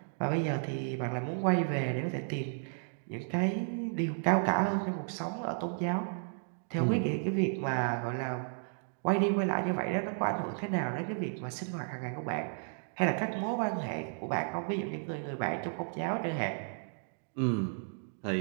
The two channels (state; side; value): silent; left; digital silence